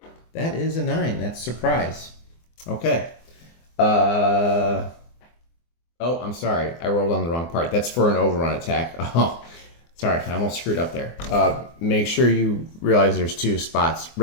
That is a 9. That's surprise. Okay. Oh, I'm sorry. I rolled on the wrong part. That's for an overrun attack. Oh, sorry. I almost screwed up there. Make sure you realize there's 2 spots.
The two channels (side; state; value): right; late; 24 ms